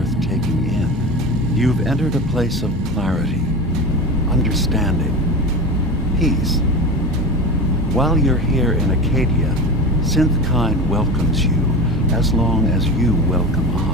taking in. You've entered a place of clarity, understanding, peace. While you're here in Acadia, SYNTH welcomes you as long as you welcome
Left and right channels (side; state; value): both; normal; correlation 0.28